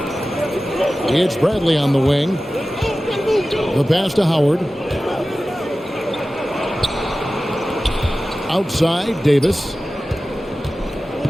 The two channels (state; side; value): normal; both; correlation 0.95